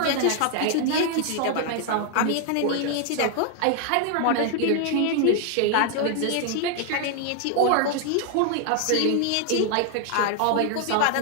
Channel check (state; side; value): different; both; correlation 0.00